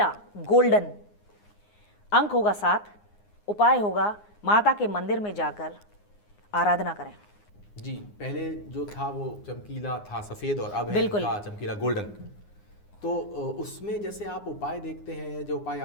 गोल्डन, अंक होगा 7, उपाय होगा माता के मंदिर में जाकर आराधना करें। जी, पहले जो था वो चमकीला था सफ़ेद और अब है बिल्कुल इनका चमकीला गोल्डन। तो उसमें जैसे आप उपाय देखते हैं, जो उपाय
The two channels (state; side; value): late; right; 9.7 ms